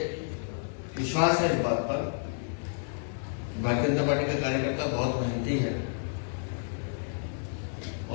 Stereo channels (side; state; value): right; silent; digital silence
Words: विश्वास है इस बात पर, भारतीय जनता पार्टी का कार्यकर्ता बहुत मेहनती है